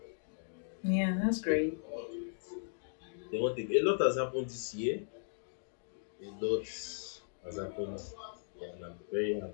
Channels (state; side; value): silent; right; digital silence